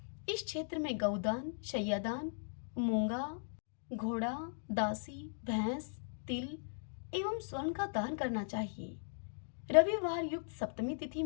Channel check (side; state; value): right; silent; digital silence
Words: इस क्षेत्र में गौदान, शय्यादान, मूंगा, घोड़ा, दासी, भैंस, तिल एवं स्वर्ण का दान करना चाहिए। रविवार युक्त सप्तमी तिथि